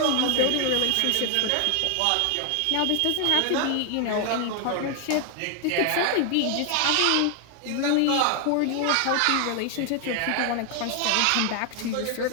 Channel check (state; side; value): different; both; correlation 0.00